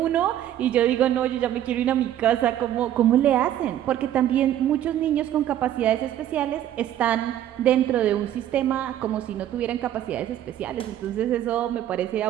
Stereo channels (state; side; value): quieter; left; 11.7 dB